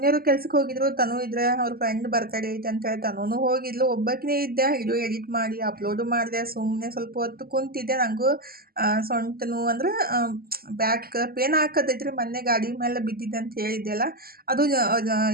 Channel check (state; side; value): late; left; 0.44 ms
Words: ಕೆಲ್ಸಕ್ಕೆ ಹೋಗಿದ್ರು. ತನು ಇದ್ರೆ ಅವ್ರ ಫ್ರೆಂಡ್ ಬರ್ತಡೇ ಐತೆ ಅಂತೇಳಿ ತನೂ ಹೋಗಿದ್ಲು. ಒಬ್ಬಾಕಿನೇ ಇದ್ದೆ. ವಿಡಿಯೋ ಎಡಿಟ್ ಮಾಡಿ ಅಪ್ಲೋಡು ಮಾಡಿದೆ. ಸುಮ್ಮನೆ ಸ್ವಲ್ಪ ಹೊತ್ತು ಕುಂತಿದ್ದೆ. ನನಗೂ ಸೊಂಟ ನೋವು ಅಂದ್ರೆ ಬ್ಯಾಕ್ ಪೇನ್ ಹಾಕತೈತ್ರಿ. ಮೊನ್ನೆ ಗಾಡಿ ಮೇಲೆ ಬಿದ್ದಿದ್ದೆ ಅಂತ ಹೇಳಿದ್ದೆ ಅಲ್ಲ, ಅದು